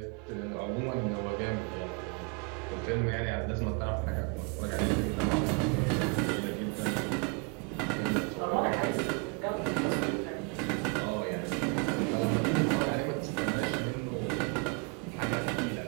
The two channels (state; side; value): quieter; left; 34.1 dB